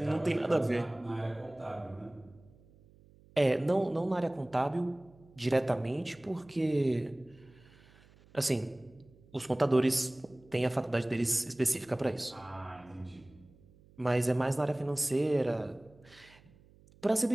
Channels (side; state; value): right; noise; hum, 27 dB below the sound